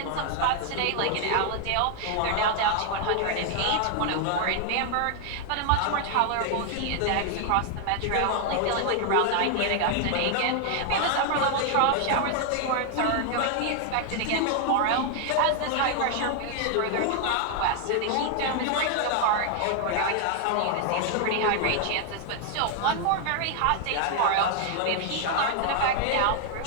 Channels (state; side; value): different; both; correlation 0.00